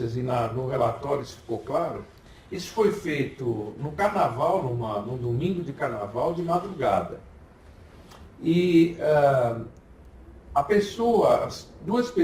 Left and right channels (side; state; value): both; identical; correlation 1.00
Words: e no relatório isso ficou claro, isso foi feito no carnaval, num domingo de carnaval, de madrugada. E as duas